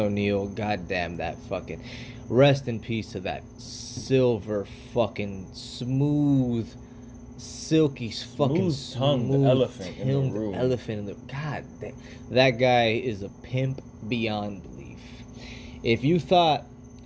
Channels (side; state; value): both; identical; correlation 1.00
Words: goddamn that fucking, rest in peace to that silver fucking smooth, silky fucking Smooth-tongued elephant in the tongued room. elephant in the god. That guy is a pimp beyond belief. If you thought